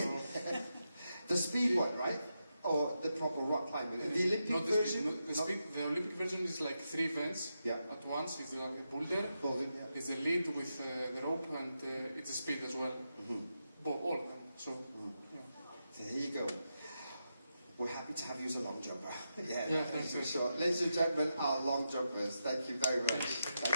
the speed one, right? Or the proper rock climbing? The Olympic not the version? speed. The Olympic version is like 3 events at once. It's a boulder. It's the lead with the rope, and it's the speed as well. All of them. So there you go. We're happy to have you as a long jumper. Yeah, thanks for sure. Ladies and gentlemen, our long jumpers, thank you very much.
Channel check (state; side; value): inverted; both; correlation -0.87